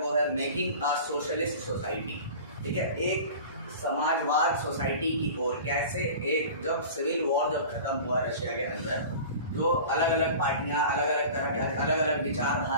है मेकिंग अ सोशलिस्ट सोसाइटी। ठीक है, एक समाजवाद सोसाइटी की ओर कैसे एक जब सिविल वॉर जब खत्म हुआ रशिया के अंदर, जो अलग अलग पार्टियां, अलग अलग तरह के अलग अलग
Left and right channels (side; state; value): both; inverted; correlation -0.38